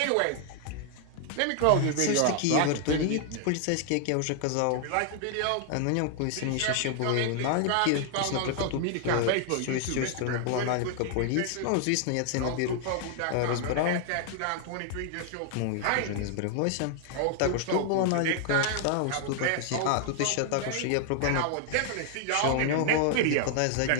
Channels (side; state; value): both; different; correlation 0.00